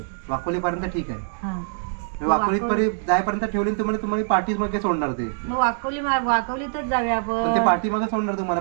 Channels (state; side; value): silent; left; digital silence